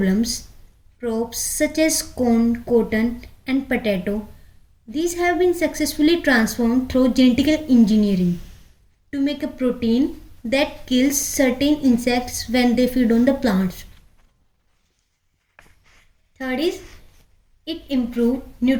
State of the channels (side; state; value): both; identical; correlation 1.00